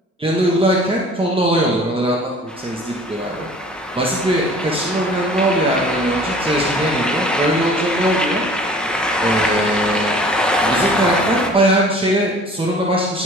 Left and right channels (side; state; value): both; normal; correlation 0.48